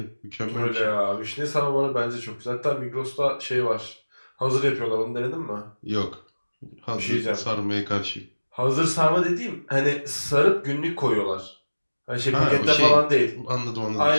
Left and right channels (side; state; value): both; inverted; correlation -1.00